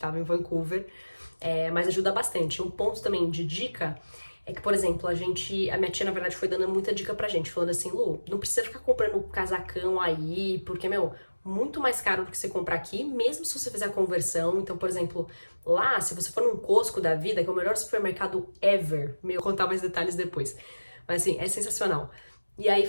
em Vancouver. Mas ajuda bastante. Um ponto também de dica é que, por exemplo, a minha tia, na verdade, foi dando muita dica pra gente, falando assim, Lu, não precisa ficar comprando casacão aí, porque, meu, muito mais caro do que você comprar aqui, mesmo se você fizer a conversão. Então, por exemplo, lá, se você for num Costco da vida, que é o melhor supermercado ever, vou contar mais detalhes depois, mas assim, é sensacional. E aí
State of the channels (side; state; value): both; inverted; correlation -1.00